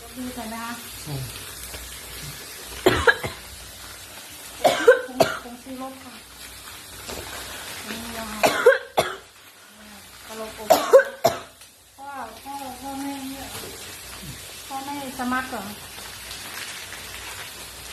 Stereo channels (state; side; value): identical; both; correlation 1.00